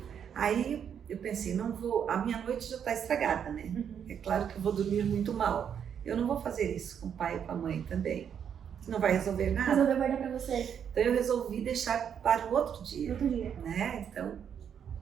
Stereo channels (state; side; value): quieter; left; 8.2 dB